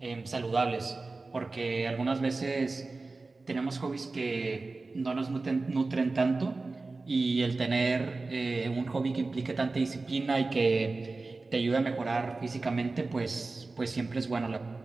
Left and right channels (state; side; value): quieter; left; 3.6 dB